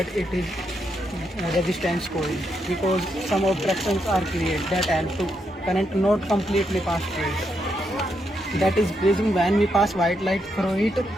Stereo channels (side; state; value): both; normal; correlation 0.80